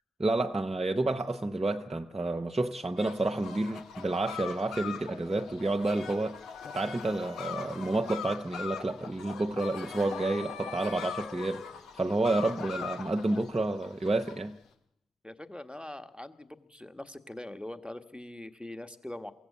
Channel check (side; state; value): both; normal; correlation 0.88